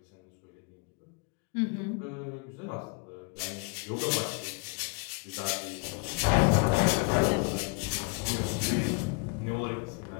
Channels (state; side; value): quieter; right; 31.6 dB